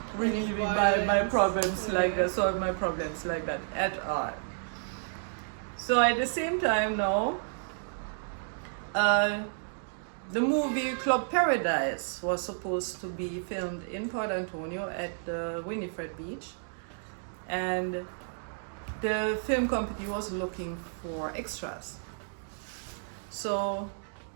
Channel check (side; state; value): left; silent; digital silence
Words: relieving my problems like that, solve my problems like that at all. So at the same time now, the movie Club Paradise was supposed to be filmed in Port Antonio at the Winifred Beach, and the film company was looking for extras. So